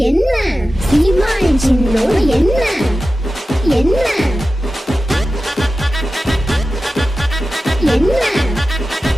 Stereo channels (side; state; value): both; normal; correlation 0.94